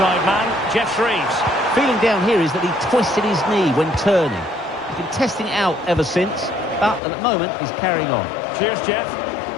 man, Jeff Shreves. Feeling down here is that he twisted his knee when turning. He's been testing it out ever since, but at the moment he's carrying on. Cheers, Jeff.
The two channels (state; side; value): drops out; right; at 7.0 s